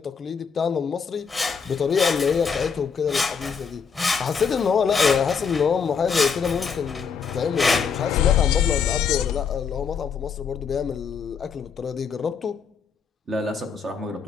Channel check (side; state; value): right; quieter; 6.2 dB